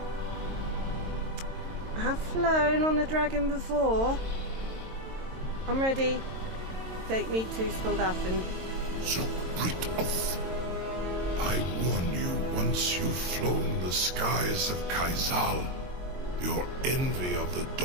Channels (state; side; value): late; left; 22 ms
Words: I have flown on a dragon before. I'm ready. Take me to Speldafen. So Brit off. I warn you, once you've flown the skies of Kaizal, your envy of the